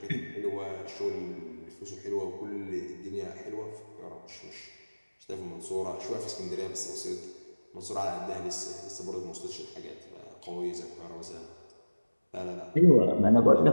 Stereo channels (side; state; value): both; inverted; correlation -1.00